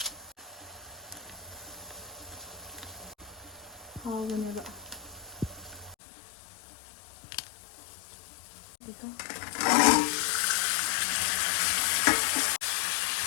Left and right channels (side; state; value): right; drops out; at 6.0 s